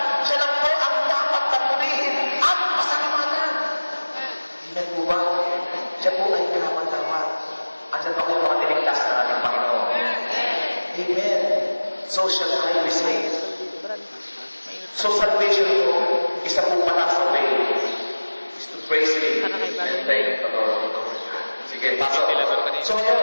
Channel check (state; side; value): inverted; both; correlation -1.00